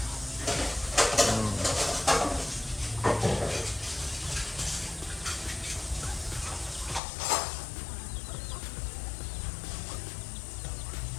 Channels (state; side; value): drops out; right; at 7.0 s